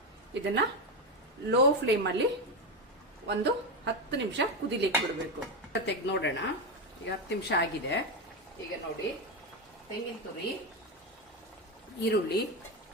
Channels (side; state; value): both; normal; correlation 0.12